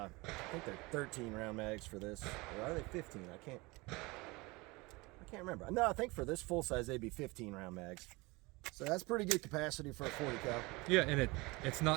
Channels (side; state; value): left; quieter; 24.0 dB